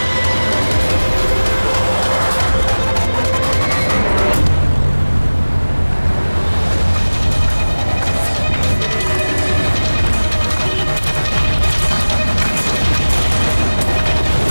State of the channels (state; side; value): inverted; both; correlation -1.00